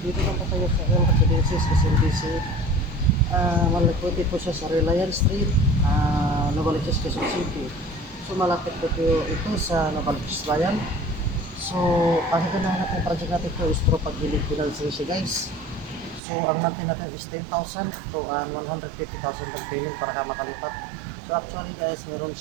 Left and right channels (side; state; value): left; drops out; at 16.2 s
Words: Dito lang po tayo sa L Residences, SMBC. Malapit po siya sa Reliance Street, Novaliches, Quezon City. So malapit po ito sa Novaliches Bayan. So ang ganahan natin project natin ito is through pag-gilid financing siya guys. So ang monthly natin is 10,000 to 150,000 down payment para ka makalipat. So actually guys, meron